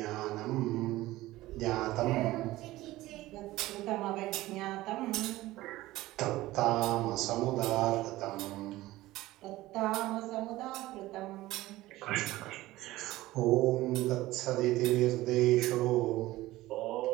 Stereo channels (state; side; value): quieter; left; 17.3 dB